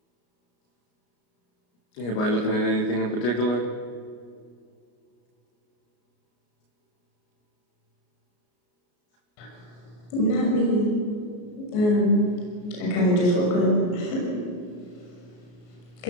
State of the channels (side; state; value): right; late; 33 ms